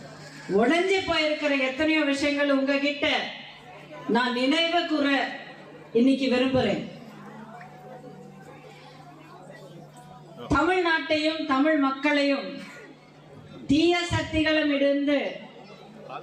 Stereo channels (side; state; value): both; identical; correlation 1.00